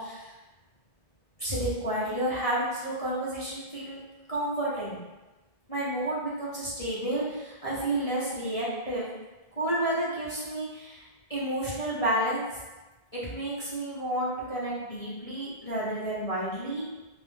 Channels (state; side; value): late; right; 1.7 ms